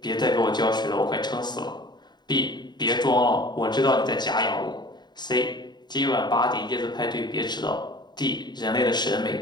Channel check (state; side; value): late; right; 0.21 ms